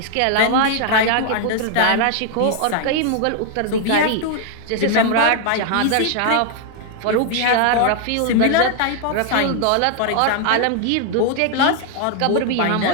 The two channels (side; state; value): both; different; correlation 0.00